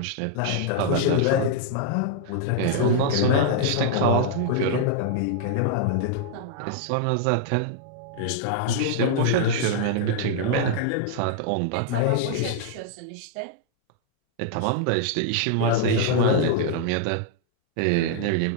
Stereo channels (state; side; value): different; both; correlation -0.01